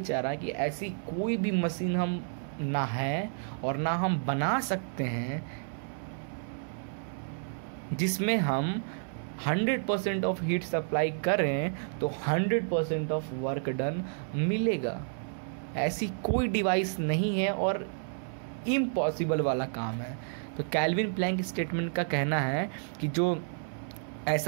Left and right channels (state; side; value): silent; left; 57 dB below the other